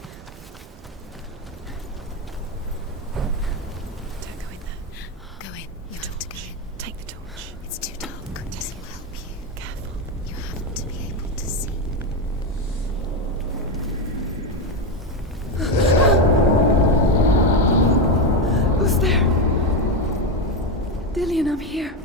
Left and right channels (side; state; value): both; normal; correlation 0.11